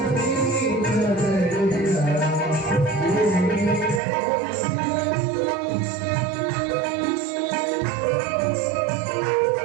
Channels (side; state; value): left; drops out; at 4.0 s